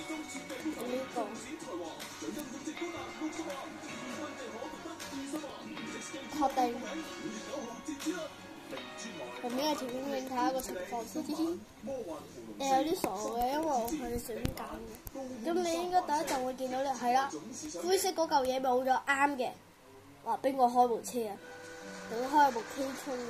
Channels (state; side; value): identical; both; correlation 1.00